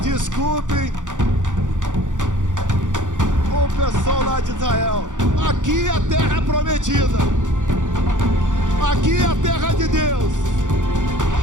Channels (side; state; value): left; late; 0.87 ms